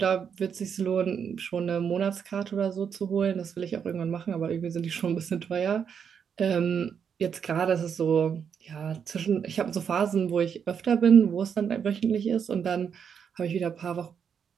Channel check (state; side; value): quieter; left; 7.3 dB